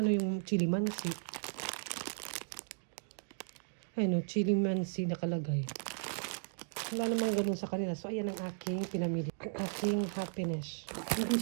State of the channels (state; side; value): silent; left; digital silence